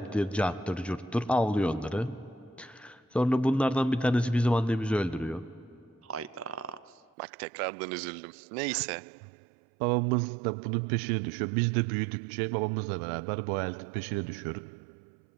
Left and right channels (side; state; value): left; drops out; at 7.1 s